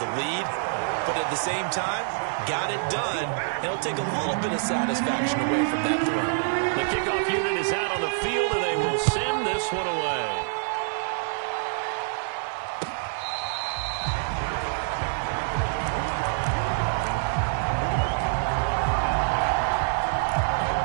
lead, but at the same time, got it done, and it'll take a little bit of satisfaction away from that throw. The kickoff unit is out on the field, and they will send this one away.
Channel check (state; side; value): silent; left; 60 dB below the other